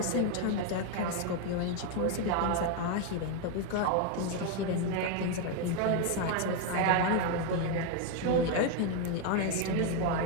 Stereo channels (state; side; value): different; both; correlation 0.01